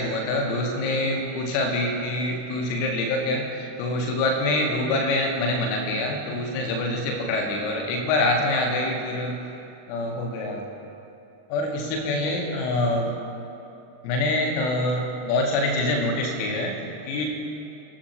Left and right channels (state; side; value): late; right; 40 ms